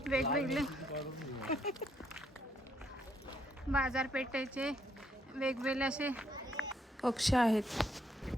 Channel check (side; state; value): both; normal; correlation 0.72